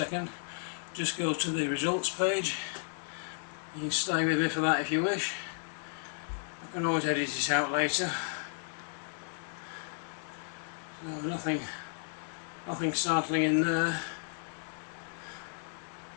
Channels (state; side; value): silent; right; digital silence